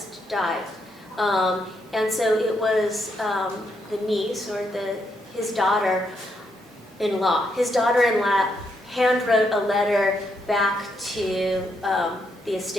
died. And so it was the niece, or his daughter-in-law. His daughter-in-law handwrote a letter back to the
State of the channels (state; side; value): normal; both; correlation 0.78